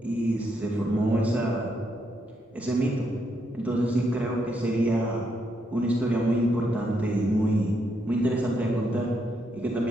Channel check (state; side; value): normal; both; correlation 0.78